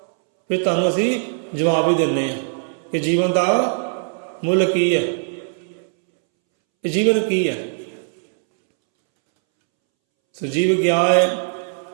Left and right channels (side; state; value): left; silent; 65 dB below the other